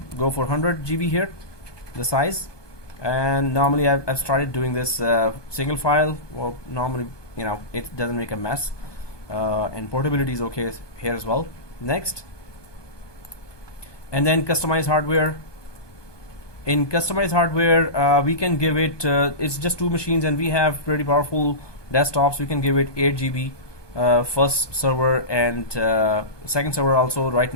Go for 100 GB here, the size, And normally I've started doing this single file. Well, normally, you know, it doesn't make a mess, and portability is okay here as well. Next, and then customize hardware. In customized hardware, we can give it, it's just 2 machines and we have pretty powerful desktops. We can give it 8 GB first server and second server also. Right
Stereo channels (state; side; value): late; right; 1.2 ms